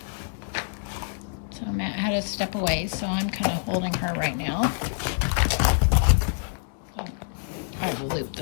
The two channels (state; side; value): silent; right; 61 dB below the other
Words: So Matt had to step away, so I'm kind of holding her right now. I will loop